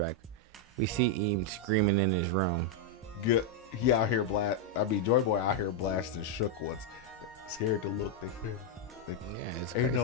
we see Eames screaming in his room. Good. He out here Joy Boy out here blasting shook ones. Scared to look. They Yeah, it's ain't no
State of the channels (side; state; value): both; normal; correlation -0.01